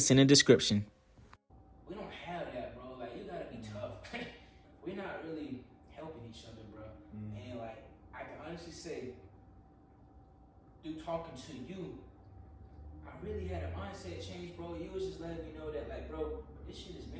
in the description. We don't have that, bro. Like, you gotta be tough. We're not really helping each other, bro. And like, I can honestly say, through talking to you, I really had a mindset change, bro. You was just letting me know that, like, bro, this shit is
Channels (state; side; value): identical; both; correlation 1.00